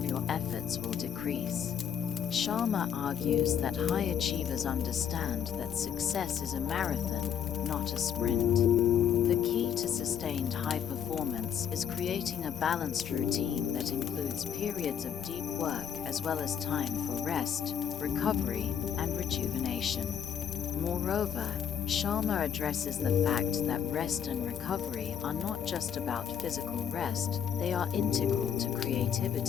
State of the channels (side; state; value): right; quieter; 8.6 dB